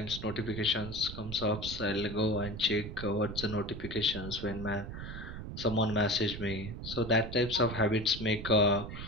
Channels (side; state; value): right; noise; rumble, 8 dB below the sound